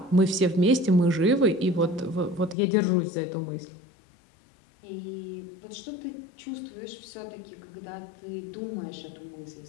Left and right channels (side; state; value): right; drops out; at 2.6 s